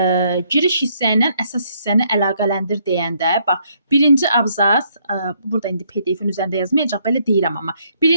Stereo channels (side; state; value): both; inverted; correlation -0.69